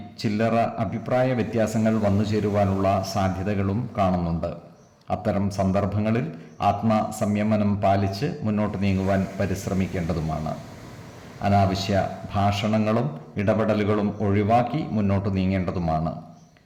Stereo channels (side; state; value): both; identical; correlation 1.00